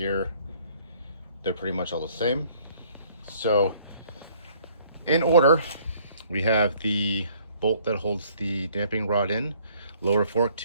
they're pretty much all the same. So in order, we have the bolt that holds the damping rod in, lower fork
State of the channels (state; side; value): inverted; both; correlation -0.60